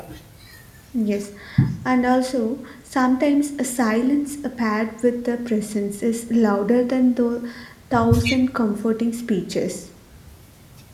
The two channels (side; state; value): both; identical; correlation 1.00